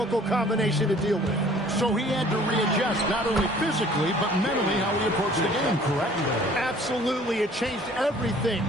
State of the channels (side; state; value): both; normal; correlation 0.53